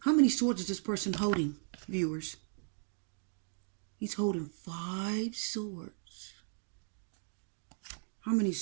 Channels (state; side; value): silent; left; digital silence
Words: How many swords is this person holding, viewers? He's holding 5 swords. How many